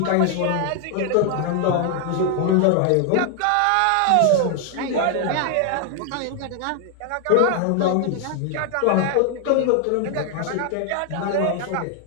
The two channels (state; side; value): different; both; correlation 0.00